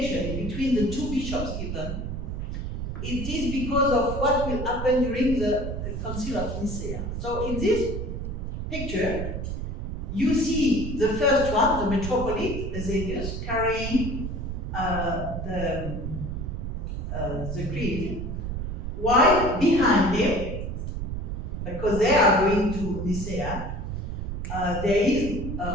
between the two bishops even? It is because of what will happen during the Council of Nicaea. So in this picture, you see the first one, the metropolitan Eusebius, carrying the creed, while behind him, because they are going to Nicea, there is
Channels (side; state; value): right; noise; rumble, 4 dB below the sound